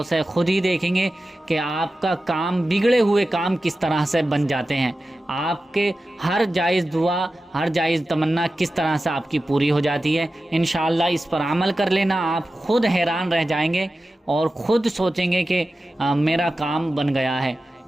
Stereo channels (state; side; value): normal; both; correlation 0.94